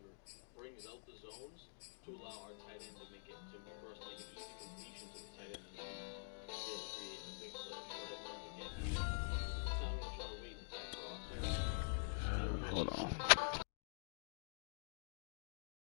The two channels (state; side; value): silent; right; digital silence